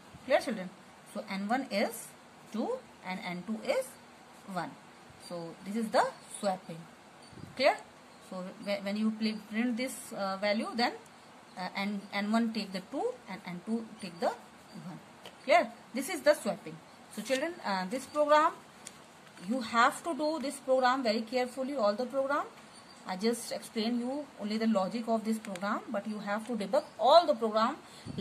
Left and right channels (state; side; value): identical; both; correlation 1.00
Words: Clear, children? So N1 is 2 and N2 is 1. So this is the swapping. Clear? So when you print this value, then N1 take the 2 and N2 take the 1. Clear? This is the swapping. So children, this program, you have to do this program very carefully, all the program. I just explain you only the logic of this program, but you have to debug all the program